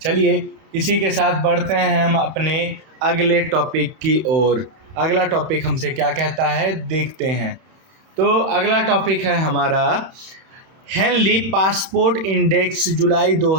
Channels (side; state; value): left; late; 31 ms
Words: चलिए, इसी के साथ बढ़ते हैं हम अपने अगले टॉपिक की ओर। अगला टॉपिक हमसे क्या कहता है, देखते हैं। तो अगला टॉपिक है हमारा हेनली पासपोर्ट इंडेक्स जुलाई